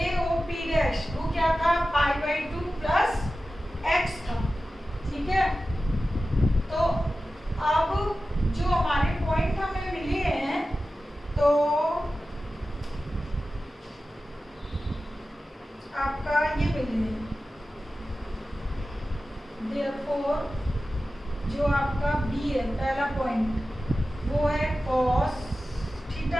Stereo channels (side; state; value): both; normal; correlation 0.94